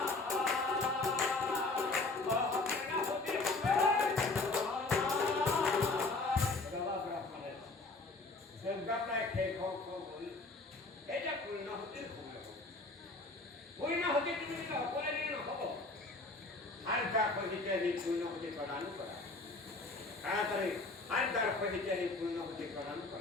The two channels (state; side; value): quieter; right; 3.3 dB